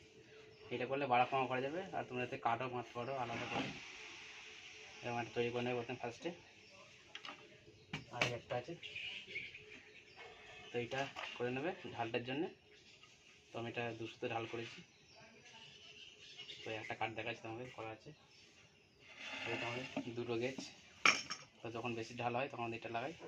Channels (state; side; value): identical; both; correlation 1.00